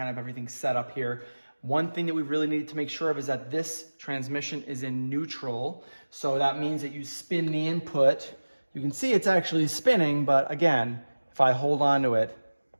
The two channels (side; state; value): both; inverted; correlation -1.00